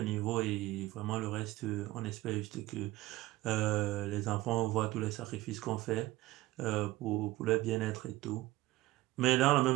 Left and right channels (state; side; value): quieter; left; 17.9 dB